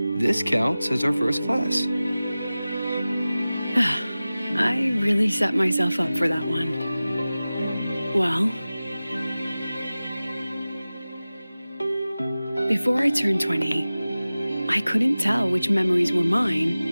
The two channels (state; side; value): inverted; both; correlation -0.97